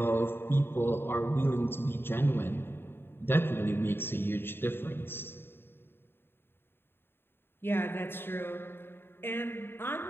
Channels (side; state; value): right; late; 0.11 ms